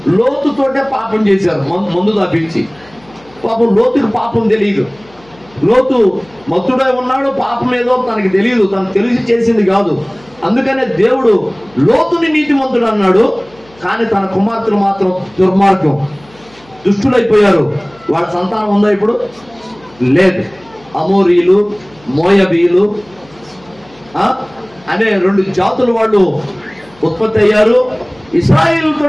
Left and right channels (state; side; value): noise; left; hum, 28 dB below the sound